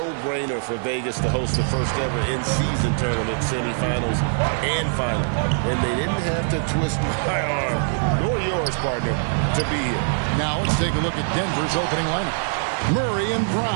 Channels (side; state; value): left; silent; 55 dB below the other